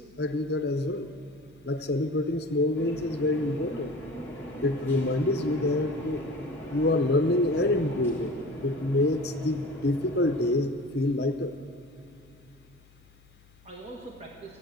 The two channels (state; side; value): noise; left; hum, 29 dB below the sound